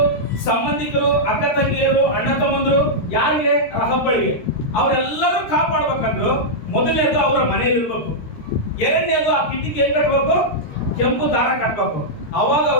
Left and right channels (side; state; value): right; late; 13 ms